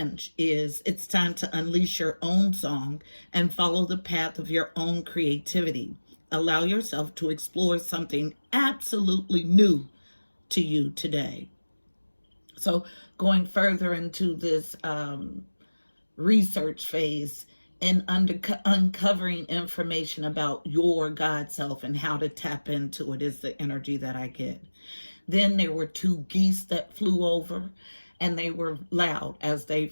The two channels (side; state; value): both; inverted; correlation -1.00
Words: is, it's time to unleash your own song and follow the path of your own creativity. Allow yourself to explore something absolutely new to you today. So going further into this research phase and uncovering information about your God self and how to tap into it is the energy that I get. Then there were two geese that flew over, and they were loud as